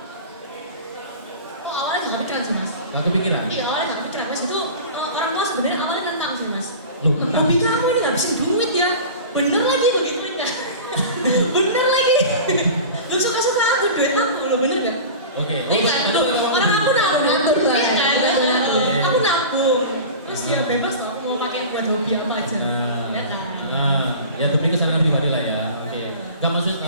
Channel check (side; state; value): both; inverted; correlation -0.35